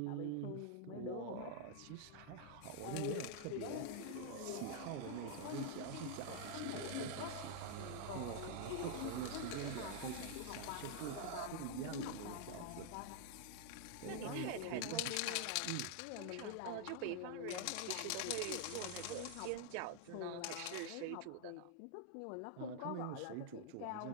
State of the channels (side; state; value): both; different; correlation 0.00